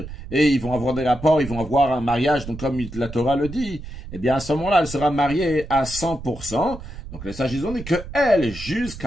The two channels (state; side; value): noise; right; rumble, 12 dB below the sound